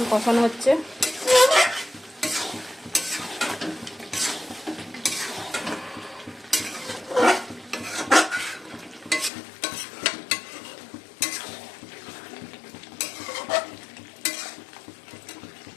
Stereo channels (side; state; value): right; drops out; at 9.3 s